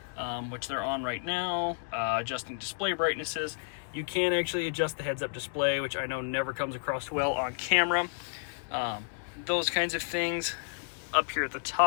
which they're on right now, adjusting display brightnesses. You can actually adjust the heads-up display, which I know never comes across well on camera. Those kinds of things. Up here at the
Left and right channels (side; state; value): right; silent; digital silence